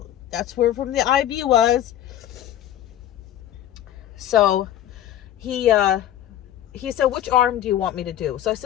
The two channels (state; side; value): quieter; right; 11.9 dB